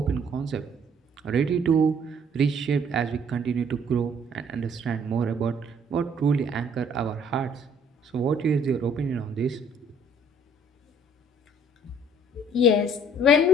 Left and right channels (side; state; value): both; normal; correlation 0.60